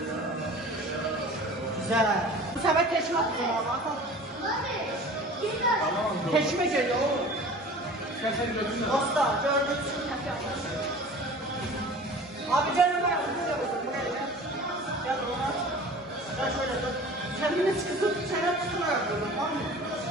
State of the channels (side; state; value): both; normal; correlation 0.41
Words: Güzel. Bu sefer teşme atacağım abi. Teşme geliyor oğlum. Dostlar gördüğünüz gibi teşme atacağım. Abi canım ben buraya gel. Gel buna. Gel şöyle dur. Kendini sıkıtıp çene tutmaya yapıyorum, tamam mı?